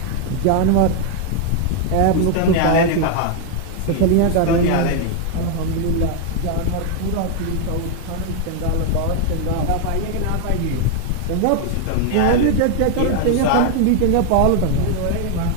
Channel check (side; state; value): both; different; correlation 0.00